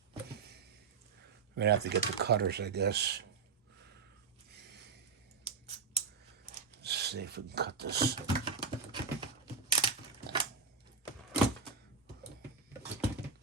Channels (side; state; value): left; quieter; 5.3 dB